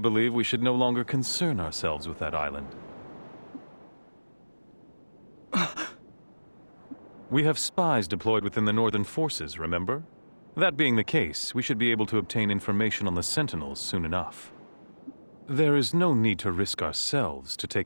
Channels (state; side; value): inverted; both; correlation -1.00